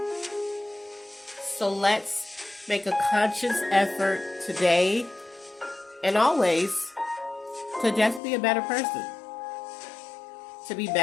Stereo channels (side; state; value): right; drops out; at 8.2 s